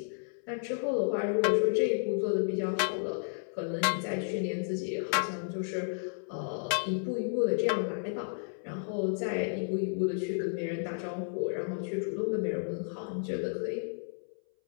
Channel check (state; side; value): silent; right; 56 dB below the other